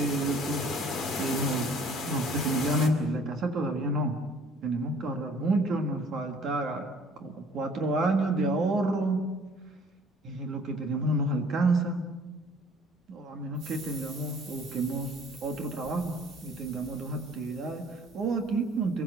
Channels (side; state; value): both; normal; correlation 0.55